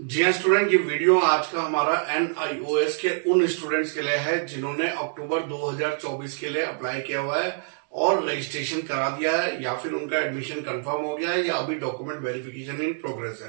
हाँ स्टूडेंट, ये वीडियो आज का हमारा NIOS के उन स्टूडेंट्स के लिए है जिन्होंने अक्टूबर 2024 के लिए अप्लाई किया हुआ है और रजिस्ट्रेशन करा दिया है, या फिर उनका एडमिशन कंफर्म हो गया है, या अभी डॉक्यूमेंट वेरिफिकेशन इन प्रोग्रेस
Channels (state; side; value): silent; left; digital silence